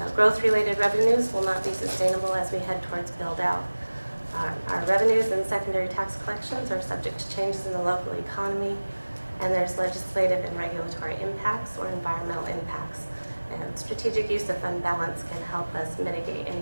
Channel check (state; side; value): inverted; both; correlation -1.00